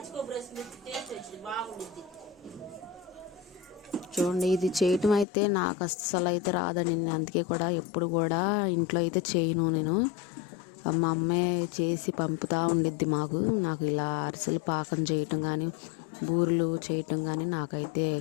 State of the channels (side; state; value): right; drops out; at 5.2 s